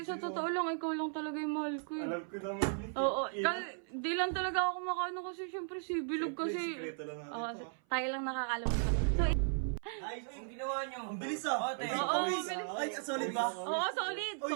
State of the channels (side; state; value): left; silent; 54 dB below the other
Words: totoo lang, ikaw lang talaga yung mahal ko eh. Alam ko naman yun. Oo, Ina. di lang talaga ako makaano kasi syempre si Bilog Siyempre, kasi. sikreto lang natin Oo, to. tayo lang nakakalam nito. So, Ay, ang ginawa nyo. Ang bilis ah. Ate. Oo, bilis. Ay, solid ba? oo, solid.